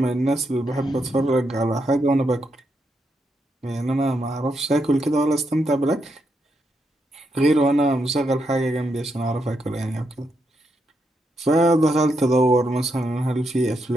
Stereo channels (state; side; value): normal; both; correlation 0.81